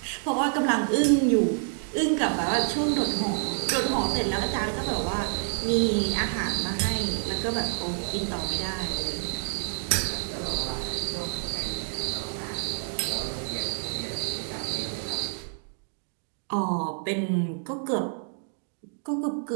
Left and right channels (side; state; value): left; silent; digital silence